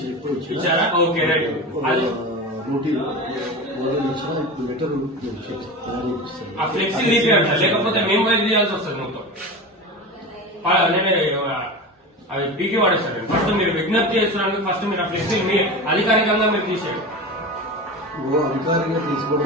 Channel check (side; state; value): both; normal; correlation 0.28